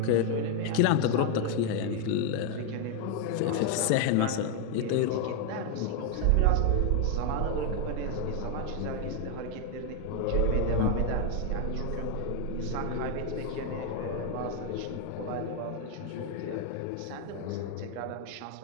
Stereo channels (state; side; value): different; both; correlation 0.01